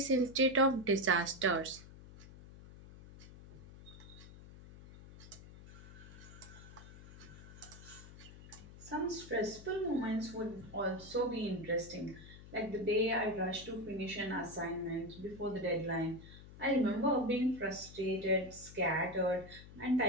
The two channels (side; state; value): left; noise; hum, 17 dB below the sound